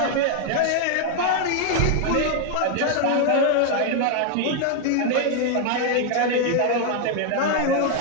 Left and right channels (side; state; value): both; different; correlation 0.00